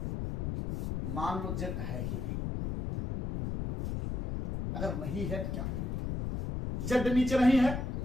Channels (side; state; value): left; noise; rumble, 3 dB below the sound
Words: मान लो z है ही नहीं। अगर नहीं है तो क्या है, z नीचे नहीं है,